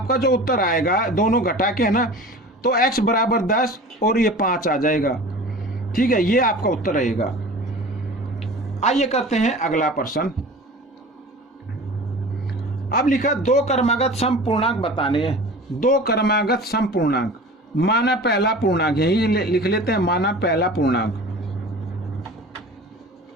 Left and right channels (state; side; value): normal; both; correlation 0.39